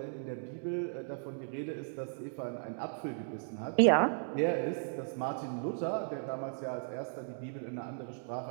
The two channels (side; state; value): left; silent; digital silence